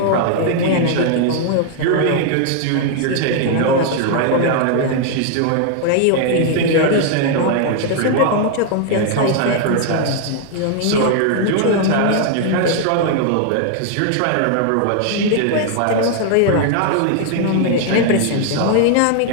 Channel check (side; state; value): both; different; correlation 0.00